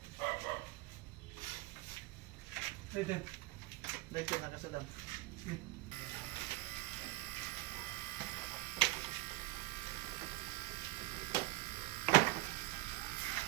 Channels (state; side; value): quieter; left; 21.0 dB